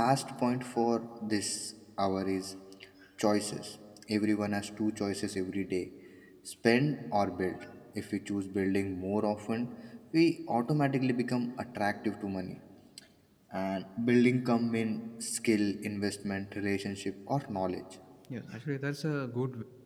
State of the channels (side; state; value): both; identical; correlation 1.00